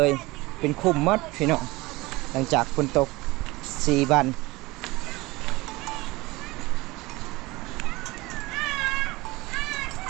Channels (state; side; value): quieter; left; 21.5 dB